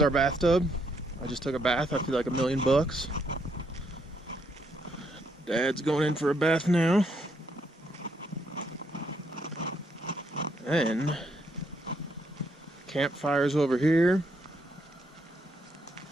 bathtub. I just took a bath. I feel like $1,000,000. Dad's going in for a bath now. And campfire's over here.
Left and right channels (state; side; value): normal; both; correlation 0.74